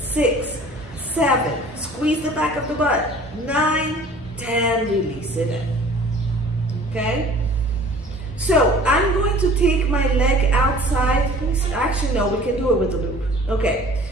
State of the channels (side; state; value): both; normal; correlation 0.48